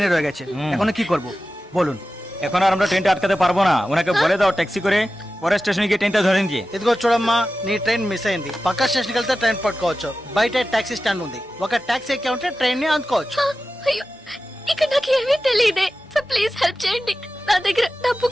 রয়ে গেছে, এখন কি করব বলুন? এখন আর আমরা ট্রেনটা আটকাতে পারবো না, ওনাকে বলে দাও ট্যাক্সি করে পরে స్టేషన్ కి ట్రైన్ ధోరణి দিয়ে। ఇదిగో చూడమ్మా, నీ ట్రైన్ మిస్ అయింది, పక్క స్టేషన్కి వెళ్తే ట్రైన్ పట్టుకోవచ్చు, బయట టాక్సీ స్టాండ్ ఉంది, ఒక టాక్సీ ఎక్కి ఉంటే ట్రైన్ ని అందుకోవచ్చు। అయ్యో, ఇక్కడ నాకు ఏమీ తెలియదే సార్, ప్లీజ్ హెల్ప్ చేయండి, నా దగ్గర డబ్బు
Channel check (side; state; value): both; normal; correlation 0.94